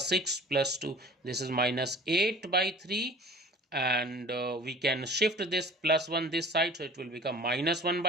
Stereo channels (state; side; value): normal; both; correlation 0.44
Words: plus 2. This is -8 by 3, and we can shift this plus 1 this side, so it will become -1